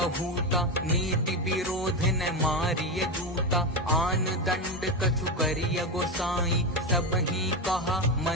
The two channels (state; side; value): normal; both; correlation 0.14